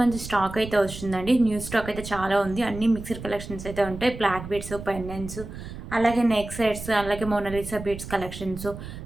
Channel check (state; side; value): noise; right; rumble, 11 dB below the sound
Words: మంచి స్టాక్ అయితే వస్తుందండి. న్యూ స్టాక్ అయితే చాలా ఉంది. అన్ని మిక్స్డ్ కలెక్షన్స్ అయితే ఉంటాయి. బ్లాక్ బీడ్స్, పెండెంట్స్, అలాగే నెక్ సెట్స్, అలాగే మోనాలిసా బీడ్స్ కలెక్షన్స్.